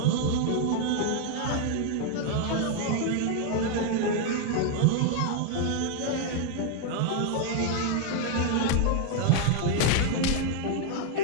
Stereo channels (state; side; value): different; both; correlation 0.00